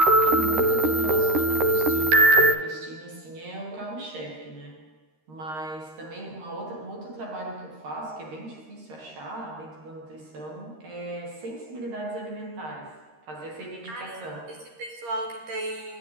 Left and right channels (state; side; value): late; left; 13 ms